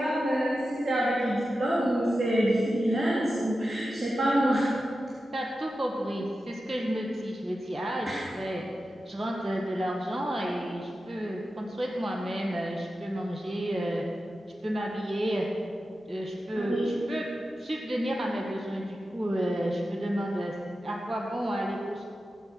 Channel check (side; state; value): both; normal; correlation 0.92